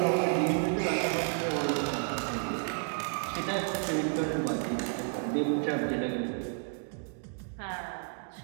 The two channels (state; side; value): silent; left; 57 dB below the other